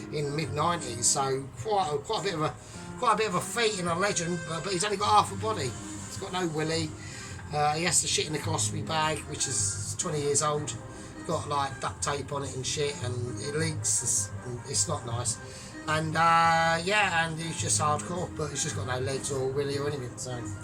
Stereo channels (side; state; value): both; identical; correlation 1.00